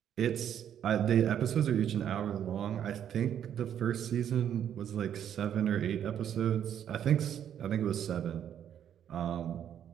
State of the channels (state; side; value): quieter; left; 9.6 dB